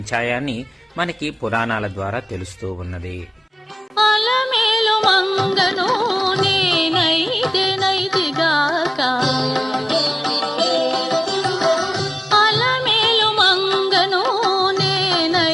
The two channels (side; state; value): both; normal; correlation 0.96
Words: మనకి పురాణాల ద్వారా తెలుస్తూ ఉన్నది.